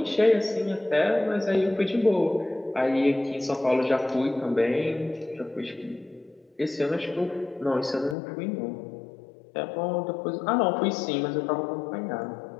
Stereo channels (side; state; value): right; drops out; at 8.2 s